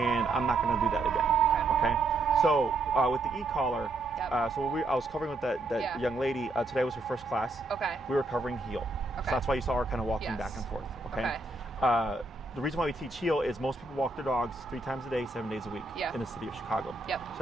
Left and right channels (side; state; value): left; quieter; 3.1 dB